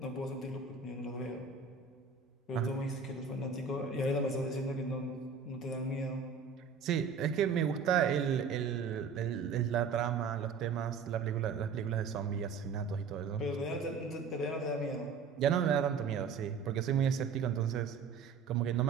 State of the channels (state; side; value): quieter; left; 5.6 dB